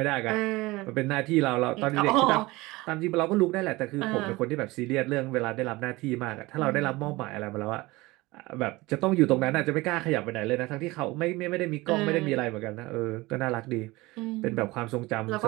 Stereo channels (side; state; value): left; quieter; 21.2 dB